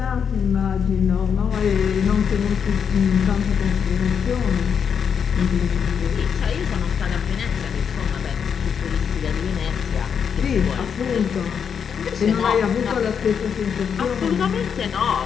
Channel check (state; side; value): quieter; right; 7.1 dB